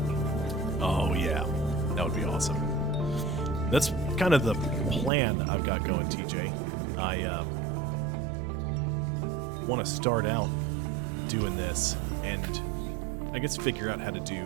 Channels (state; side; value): drops out; left; at 5.1 s